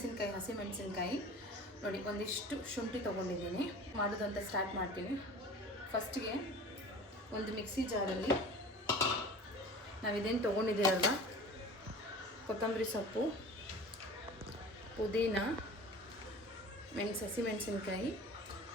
ಹಸಿ ಮೆಣಸಿನ್ಕಾಯಿ ನೋಡಿ, ಒಂದಿಷ್ಟು ಶುಂಠಿ ತೊಗೊಂಡಿದ್ದೀನಿ. ಮಾಡೋದು ಅಂತ ಸ್ಟಾರ್ಟ್ ಮಾಡ್ತೀನಿ. ಫಸ್ಟಿಗೆ ಒಂದು ಮಿಕ್ಸಿ ಜಾರಲ್ಲಿ ನಾವಿದೇನು ತೊಗೊಂಡಿದ್ದೀರಲ್ವ, ಕೊತ್ತಂಬರಿ ಸೊಪ್ಪು, ಪುದೀನ, ಹಸಿ ಮೆಣಸಿನ್ಕಾಯಿ,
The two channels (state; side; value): normal; both; correlation 0.40